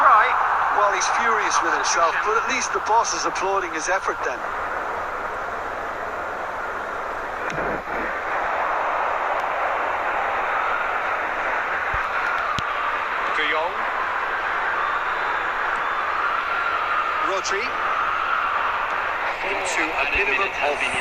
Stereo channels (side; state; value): both; identical; correlation 1.00